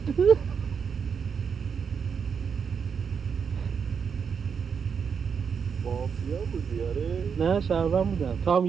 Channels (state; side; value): quieter; left; 6.5 dB